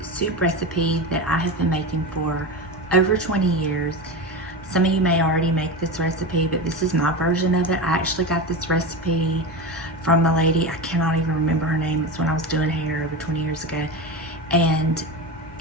soup recipe that I have been making for over 20 years. Some of you may already make this recipe, but this is my version of it. I actually got this recipe from a lady, I cannot even remember her name. It's when I was doing hair over 20 years ago. And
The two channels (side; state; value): both; normal; correlation 0.22